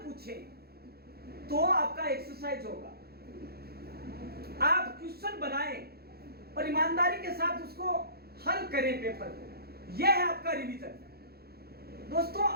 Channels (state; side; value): late; left; 0.46 ms